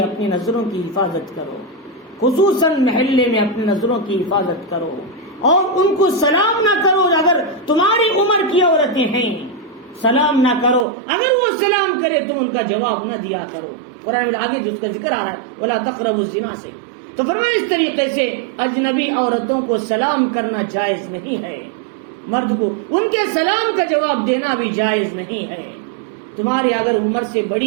اپنی نظروں کی حفاظت کرو، خصوصاً محلے میں اپنی نظروں کی حفاظت کرو، اور ان کو سلام نہ کرو اگر تمہاری عمر کی عورتیں ہیں، سلام نہ کرو، اگر وہ سلام کرے تم ان کا جواب نہ دیا کرو۔ قرآن میں آگے جو اس کا ذکر آ رہا ہے وَلَا تَقْرَبُوا الزِّنَا سے، تو فرمایا اس طریقے سے اجنبی عورتوں کو سلام کرنا جائز نہیں ہے، مرد کو ان کے سلام کا جواب دینا بھی جائز نہیں ہے۔ تمہارے اگر عمر سے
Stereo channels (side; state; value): left; drops out; at 10.9 s